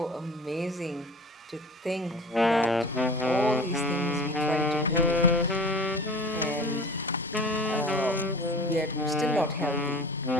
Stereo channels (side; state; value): both; normal; correlation 0.40